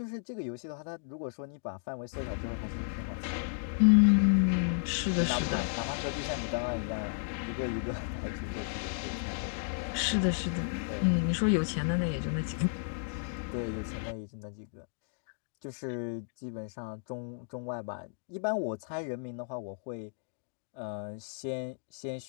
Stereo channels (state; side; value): silent; right; digital silence